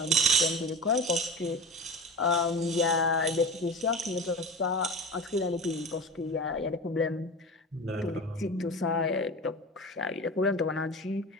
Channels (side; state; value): both; normal; correlation 0.30